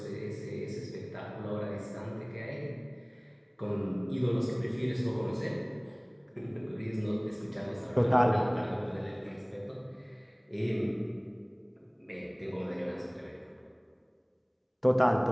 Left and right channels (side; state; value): both; identical; correlation 1.00